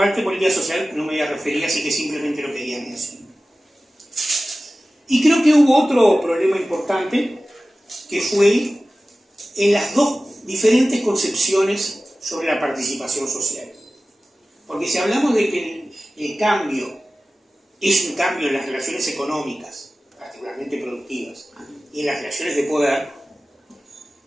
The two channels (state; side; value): normal; both; correlation 0.96